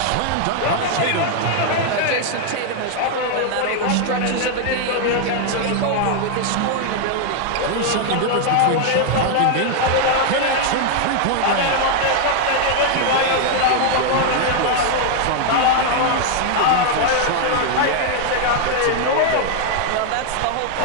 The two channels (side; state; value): both; different; correlation 0.00